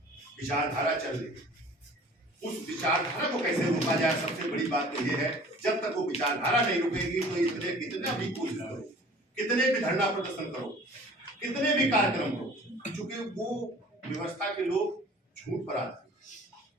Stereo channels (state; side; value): normal; both; correlation 0.47